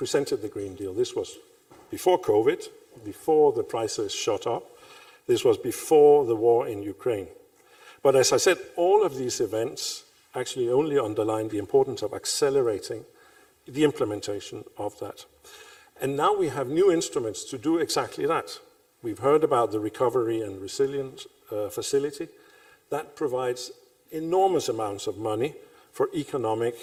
the Green Deal, this was before COVID, before the prices shot up, this was before the war in Ukraine. But as I said, all of these events actually only underline the importance of accelerating the implementation of that. And now we have new instruments to do exactly that. We've heard about the Recovery and Resilience Facility. That provides enormous amounts of money for economic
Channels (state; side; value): identical; both; correlation 1.00